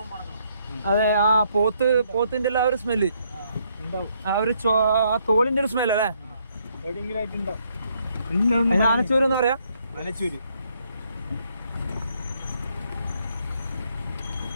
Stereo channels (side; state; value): both; inverted; correlation -0.71